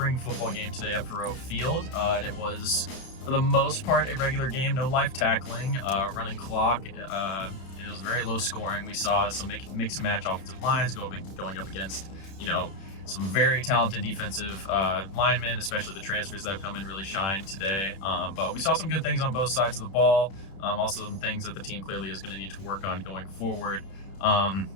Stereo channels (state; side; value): late; right; 31 ms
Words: football game today at Faroe Field. And it was, for the most part, a regular game, no live tackling, running clock. It was very low scoring. We saw some mix and match offensive lines going up against, some very talented defensive linemen, especially the transfers that have come in really shine today. But we saw some good things on both sides of the ball. Also some things that the team clearly is going to need to work on going forward.